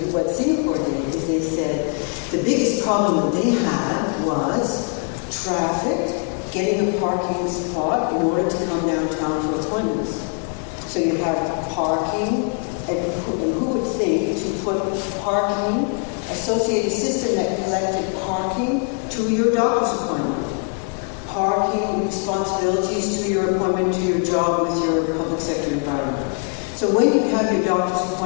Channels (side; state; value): right; quieter; 38.3 dB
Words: what Singapore did, is they said the biggest problem that they had was traffic, getting a parking spot in order to come downtown for appointments. So you have parking, and who would think to put parking, associate a system that collected parking to your doctor's appointment, parking responsibilities to your appointment, to your job with your public sector environment. So when you have your doctor's